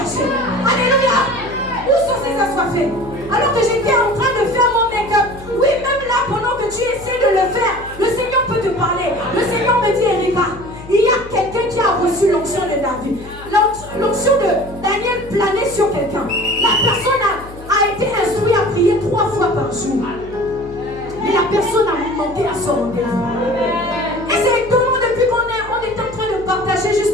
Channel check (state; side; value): noise; left; hum, 17 dB below the sound